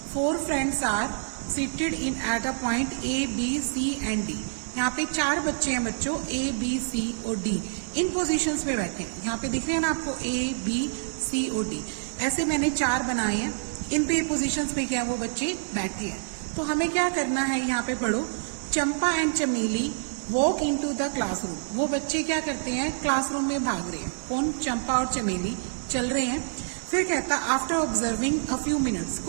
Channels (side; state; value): left; silent; digital silence